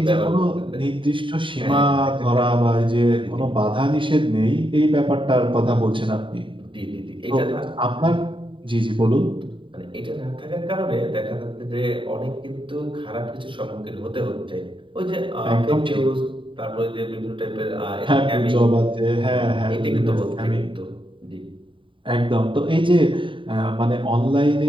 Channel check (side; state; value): left; late; 0.25 ms